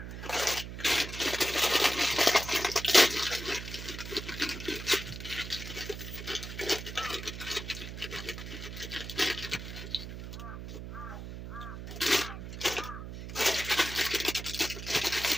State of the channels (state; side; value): noise; right; hum, 9 dB below the sound